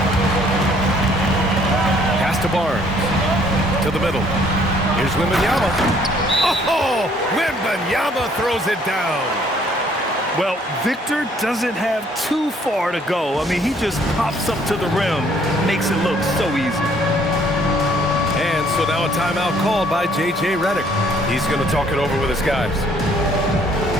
Pass to Barnes. To the middle. Here's Wembanyama. Oh, Wembanyama throws it down. Well, Victor doesn't have too far to go. I mean, he just pops up to the rim, makes it look so easy. And so now a timeout called by J.J. Redick. He's going to talk it over with his guys.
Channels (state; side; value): normal; both; correlation 0.62